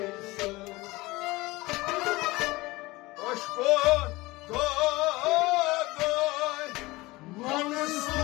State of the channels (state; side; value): quieter; right; 20.9 dB